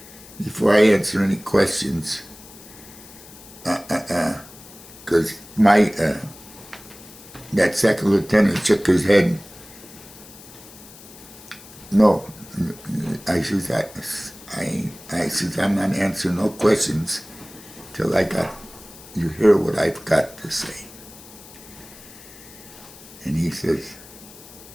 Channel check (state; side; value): noise; left; hiss, 19 dB below the sound